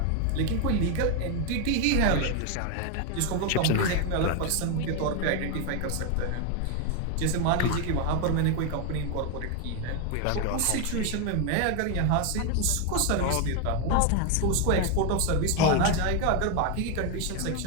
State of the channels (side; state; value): both; different; correlation 0.01